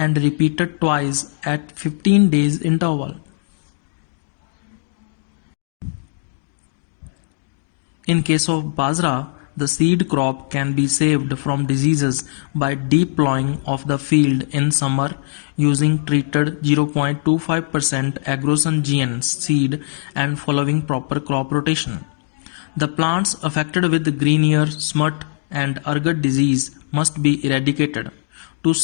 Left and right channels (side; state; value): right; silent; 62 dB below the other